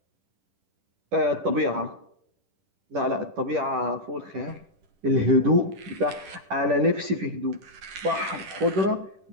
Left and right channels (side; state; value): left; late; 10 ms